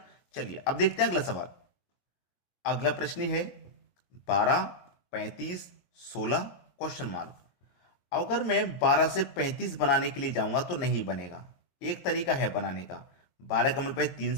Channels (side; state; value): right; late; 22 ms